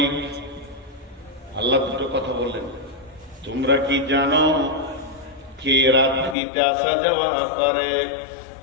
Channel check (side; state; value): right; drops out; at 6.4 s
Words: আল্লাহ দুটো কথা বললেন। তোমরা কি জানো কে রাত্রিতে আসা যাওয়া করে?